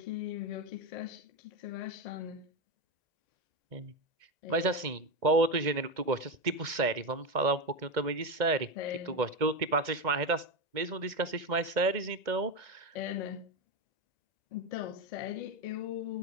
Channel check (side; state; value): left; late; 2.1 ms